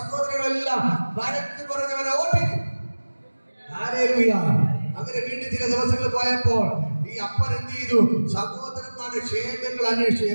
വഴക്ക് പറഞ്ഞവനെ ഓട്ടിച്ചു. ഹാലേലൂയ. അങ്ങനെ വീണ്ടും ചില ദിവസങ്ങൾ പോയപ്പോൾ ഈ അപ്പൻ എന്ത് ചെയ്തു? സഹോദരന്മാരുടെ ക്ഷേമങ്ങൾ അന്വേഷിച്ചു.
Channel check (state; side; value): inverted; both; correlation -1.00